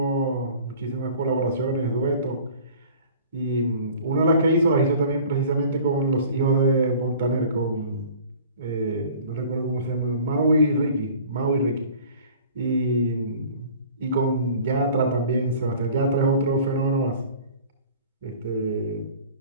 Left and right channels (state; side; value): inverted; both; correlation -0.47